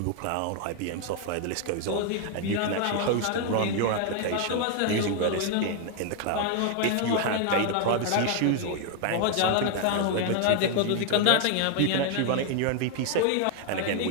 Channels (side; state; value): both; different; correlation 0.00